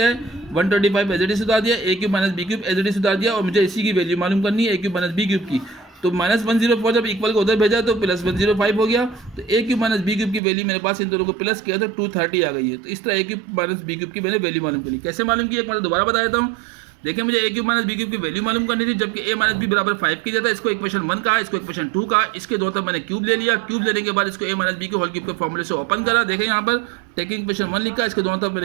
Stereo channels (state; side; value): drops out; left; at 10.4 s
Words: है, 125 एज इट इज उतार दिया, a cube minus B cube as it is उतार दिया और मुझे इसी की वैल्यू मालूम करनी है a cube minus B cube की। तो माइनस 104 जब इक्वल को उधर भेजा तो प्लस 105 हो गया, तो a cube minus B cube की वैल्यू मेरे पास इन दोनों को प्लस किया तो 230 आ गई है। तो इस तरह a cube minus B cube की मैंने वैल्यू मालूम करी। कैसे मालूम की एक बार दोबारा बता देता हूँ। देखिए मुझे a cube minus B cube की वैल्यू मालूम करनी थी, जबकि a माइनस बी बराबर 5 की जाता है। इसको इक्वेशन 1 कहा, इसको इक्वेशन 2 कहा, इसके दोनों तरफ मैंने क्यूब ले लिया। क्यूब लेने के बाद इसको a माइनस बी के होल क्यूब के फॉर्मूले से ओपन करा। देखें यहाँ पर टेकिंग इक्वेशन 1 लिखा, इसके दोनों तरफ